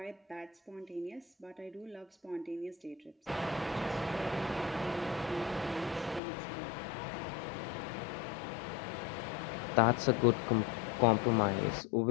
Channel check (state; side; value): drops out; right; at 6.2 s